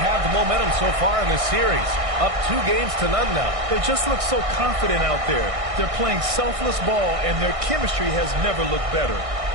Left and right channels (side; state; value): left; late; 1.6 ms